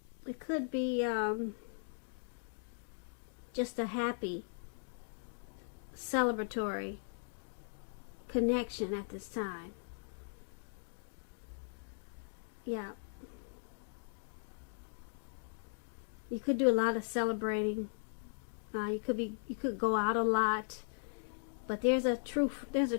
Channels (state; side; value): silent; right; digital silence